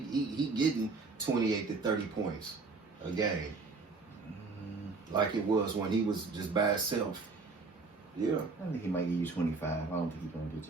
getting 28 to 30 points a game, like it was when he was just by himself. Yeah. I think he might give you 25. I don't think he's gonna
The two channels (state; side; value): quieter; left; 4.1 dB